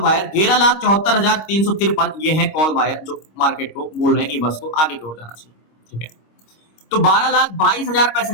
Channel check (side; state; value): right; late; 26 ms